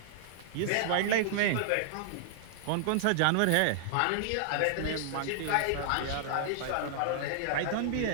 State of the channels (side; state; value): both; different; correlation -0.01